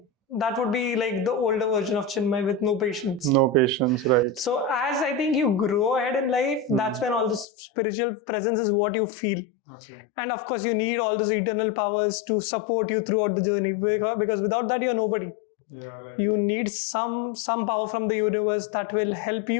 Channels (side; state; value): right; drops out; at 7.5 s